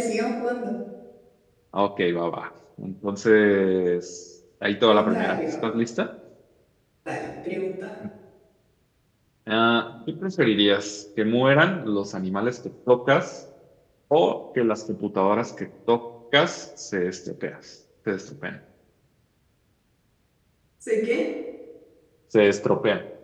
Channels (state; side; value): identical; both; correlation 1.00